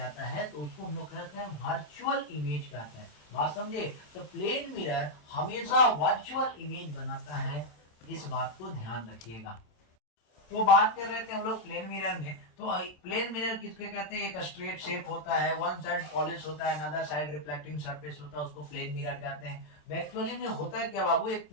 है तो उसको हम लोग कहते हैं वर्चुअल इमेज कहते हैं। बात समझे। तो प्लेन मिरर हमेशा वर्चुअल इमेज बनाता है, इस बात को ध्यान रखिएगा। तो बात कर रहे थे हम लोग प्लेन मिरर में, तो प्लेन मिरर किसके कहते हैं, एक स्ट्रेट शेप होता है, वन साइड पॉलिश होता है, अनदर साइड रिफ्लेक्टिंग सरफेस होता है, उसको प्लेन मिरर कहते हैं। एक्चुअली में होता है क्या बाबू, एक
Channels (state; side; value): late; right; 27 ms